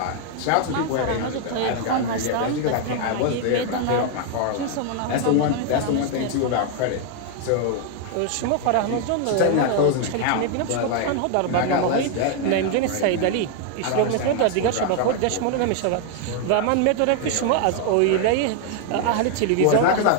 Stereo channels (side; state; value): both; different; correlation 0.00